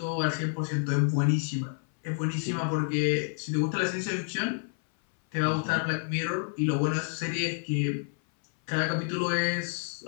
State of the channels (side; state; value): right; silent; 59 dB below the other